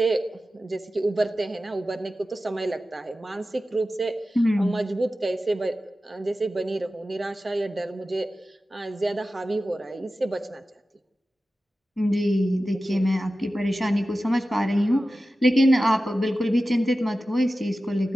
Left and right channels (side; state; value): both; normal; correlation 0.94